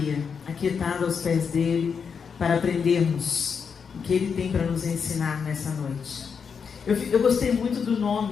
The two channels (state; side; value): quieter; right; 6.2 dB